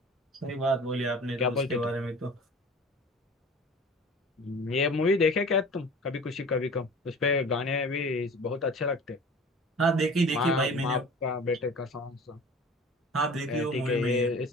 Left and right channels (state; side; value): normal; both; correlation 0.41